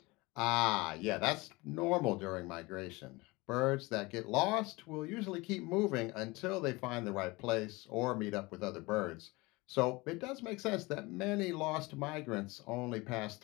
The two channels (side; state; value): right; quieter; 23.3 dB